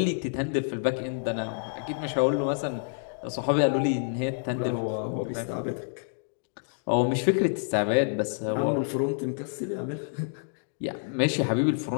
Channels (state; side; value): silent; right; digital silence